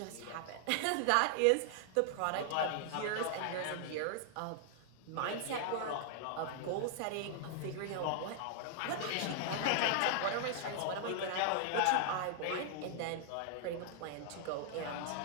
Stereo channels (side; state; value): both; different; correlation 0.00